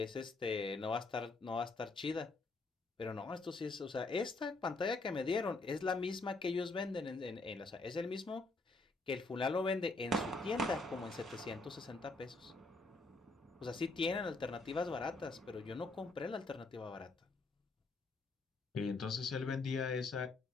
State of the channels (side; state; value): right; quieter; 3.3 dB